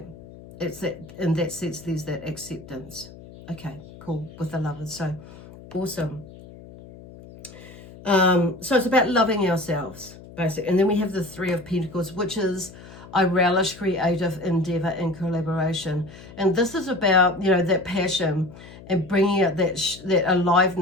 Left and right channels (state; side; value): noise; left; hum, 18 dB below the sound